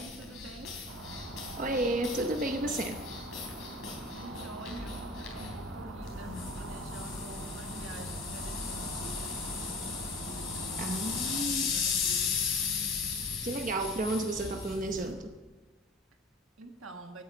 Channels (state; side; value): normal; both; correlation 0.40